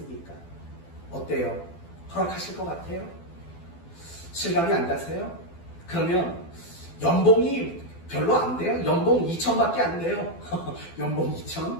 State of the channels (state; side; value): late; right; 12 ms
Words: 어때요? 허락하실 것 같아요? 실감이 안 가세요? 그러면 연봉이 별로 안 돼요? 연봉 2천밖에 안 돼요. 연봉 2천?